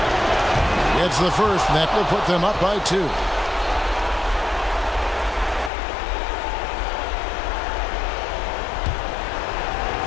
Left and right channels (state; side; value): drops out; right; at 5.7 s